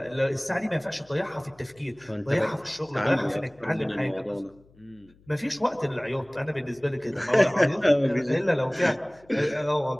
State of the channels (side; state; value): left; noise; hum, 29 dB below the sound